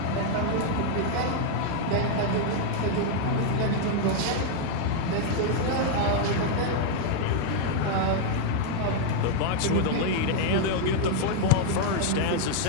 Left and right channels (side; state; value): both; different; correlation 0.00